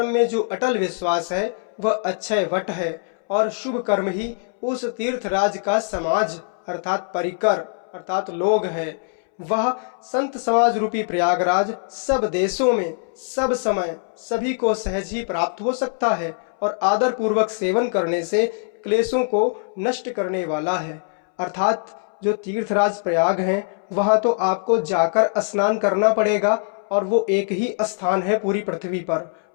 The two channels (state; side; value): silent; right; 64 dB below the other